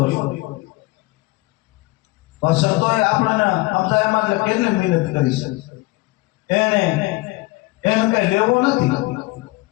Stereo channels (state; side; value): quieter; right; 22.0 dB